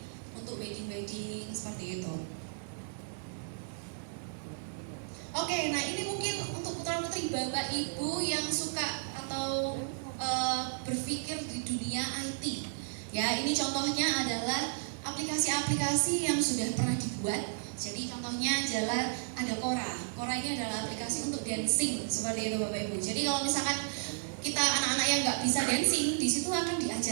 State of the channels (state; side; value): silent; left; digital silence